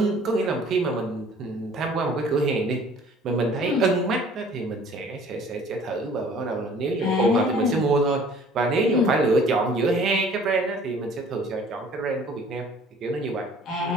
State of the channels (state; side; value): normal; both; correlation 0.52